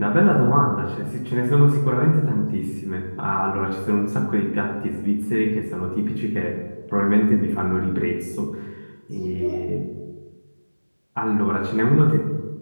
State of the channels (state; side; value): inverted; both; correlation -1.00